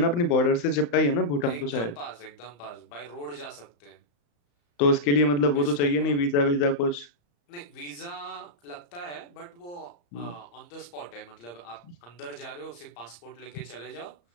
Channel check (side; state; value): right; late; 34 ms